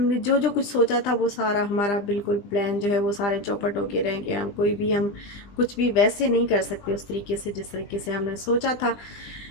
जो जो कुछ सोचा था वो सारा हमारा बिल्कुल प्लान जो है वो सारे चौपट होके रह गए। हम कुछ भी वैसे नहीं कर सकते उस तरीके से जिस तरीके से हमने सोचा था।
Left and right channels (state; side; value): late; right; 20 ms